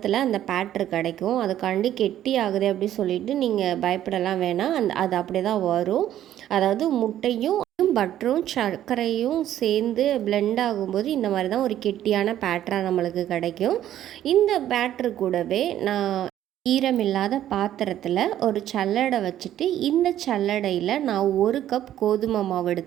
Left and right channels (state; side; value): quieter; left; 11.9 dB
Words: அந்த பேட்டர் கிடைக்கும். அதுக்காண்டி கெட்டி ஆகுது அப்படின்னு சொல்லிட்டு நீங்கள் பயப்படலாம் வேணாம். அது அப்படியே தான் வரும். அதாவது முட்டையும் பட்டரும் சர்க்கரையும் சேர்ந்து பிளெண்ட் ஆகும்போது இந்த மாதிரி தான் ஒரு கெட்டியான பேட்டராக நம்மளுக்கு கிடைக்கும். இந்த பேட்டரு கூடவே நான் ஈரமில்லாத பாத்திரத்தில் ஒரு சல்லடை வச்சுட்டு இந்த சல்லடையில் நான் 1 கப் கோதுமை மாவு